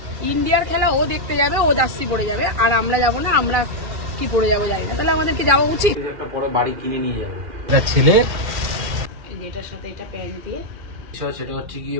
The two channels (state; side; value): late; left; 2.4 ms